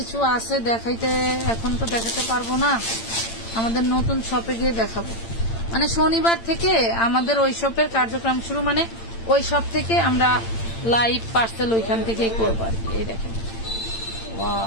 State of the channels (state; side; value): late; right; 8.8 ms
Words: আছে দেখাইতে, এখন তো দেখাতে পারবো না, আমাদের নতুন শপে গিয়ে দেখাবো। মানে শনিবার থেকে আমাদের ওই শপের কার্যক্রম শুরু, মানে ওই শপ থেকে আমরা লাইভ পার্সেল ওইখান থেকেই করবো আর কি। এই দেখেন,